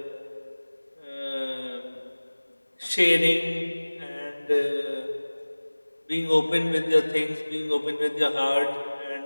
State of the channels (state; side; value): inverted; both; correlation -1.00